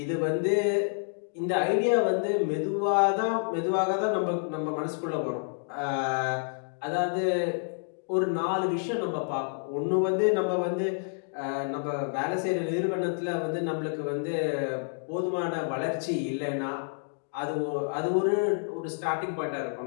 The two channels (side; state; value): right; silent; digital silence